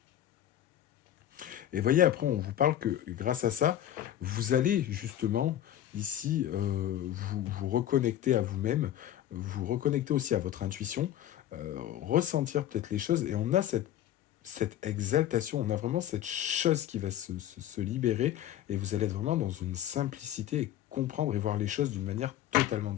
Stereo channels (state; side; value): quieter; right; 11.9 dB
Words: Et voyez, après, on vous parle que grâce à ça, vous allez justement ici vous reconnecter à vous-même, vous reconnecter aussi à votre intuition, ressentir peut-être les choses. Et on a cette exaltation, on a vraiment cette chose qui va se libérer. Et vous allez être vraiment dans une simplicité et comprendre et voir les choses d'une manière totalement